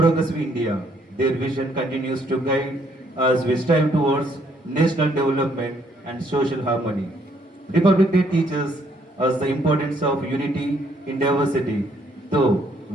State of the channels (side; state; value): both; normal; correlation 0.68